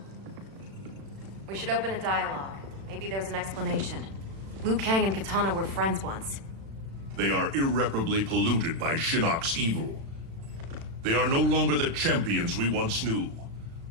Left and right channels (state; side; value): late; left; 36 ms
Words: We should open a dialogue. Maybe there's an explanation. Liu Kang and Katana were friends once. They are irreparably polluted by Shinnok's evil. They are no longer the champions we once knew.